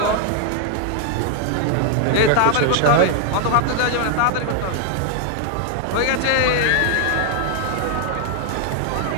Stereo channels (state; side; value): different; both; correlation 0.00